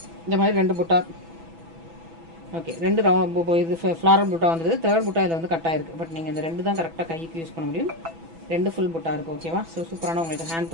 இந்த மாதிரி 2 புட்டா ஓகே, 2 இது ஃப்ளாரல் புட்டா வந்தது. 3rd புட்டா இதில் வந்து கட்டாக இருக்குது. பட் நீங்கள் இந்த 2 தான் கரெக்டாக கைக்கு யூஸ் பண்ண முடியும். 2 ஃபுல் புட்டா இருக்குது. ஓகேவா? ஸோ சூப்பரான உங்களுக்கு ஹேண்ட்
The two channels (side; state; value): left; late; 6.1 ms